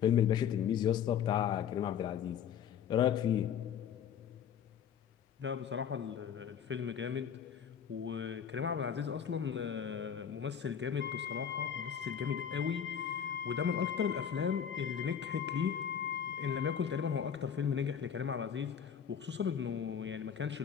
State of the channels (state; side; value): quieter; right; 8.2 dB